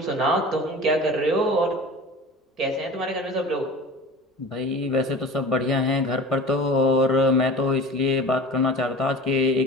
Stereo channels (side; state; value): both; normal; correlation 0.38